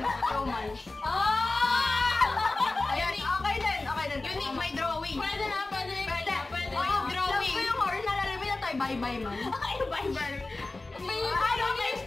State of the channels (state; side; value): quieter; right; 3.2 dB